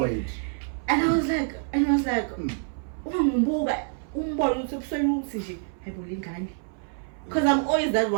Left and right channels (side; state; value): left; silent; 58 dB below the other